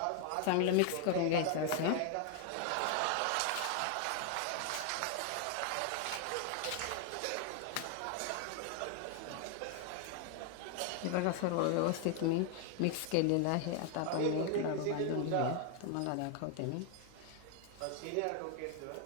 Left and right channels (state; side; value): different; both; correlation 0.00